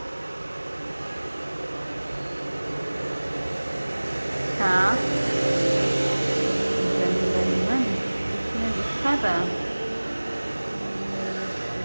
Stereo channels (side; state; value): both; inverted; correlation -1.00